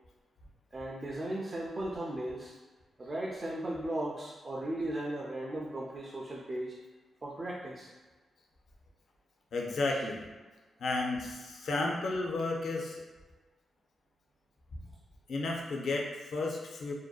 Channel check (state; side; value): normal; both; correlation 0.85